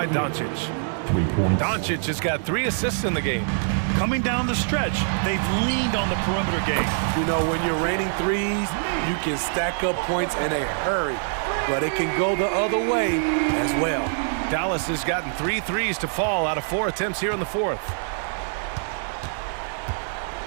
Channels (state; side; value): silent; left; 56 dB below the other